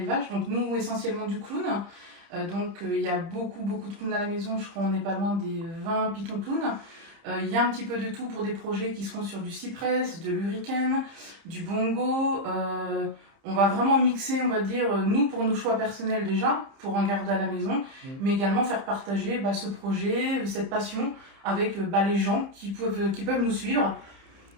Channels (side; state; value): left; late; 30 ms